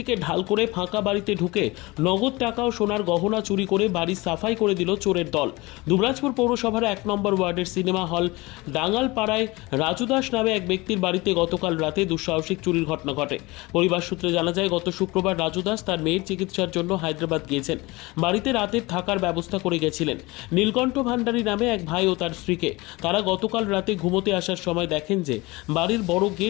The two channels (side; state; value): right; quieter; 22.7 dB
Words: ঢাল করে ফাঁকা বাড়িতে ঢুকে নগদ টাকা ও সোনার গহনা চুরি করে বাড়ি সাফাই করে দিল চোরের দল। দুবরাজপুর পৌরসভার 1 নম্বর ওয়ার্ডের সিনেমা হল ডাঙ্গালপাড়ায় রাজু দাস নামে এক ব্যক্তির বাড়িতে গতকাল রাতে দুঃসাহসিক চুরির ঘটনা ঘটে। পরিবার সূত্রে জানা যায়, গত শুক্রবার রাজু দাস তার মেয়ের চিকিৎসার জন্য হায়দ্রাবাদ গিয়েছেন। বাড়িতে রাতের থাকার ব্যবস্থা করে গেছিলেন নীলকণ্ঠ ভান্ডারী নামে এক ভাই ও তার স্ত্রীকে। তারা গতকাল রাতে ঘুমোতে আসার সময় দেখেন যে বাড়ির বড়